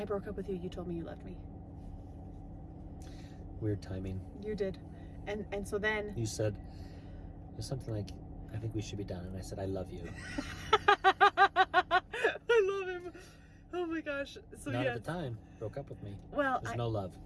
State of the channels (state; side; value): identical; both; correlation 1.00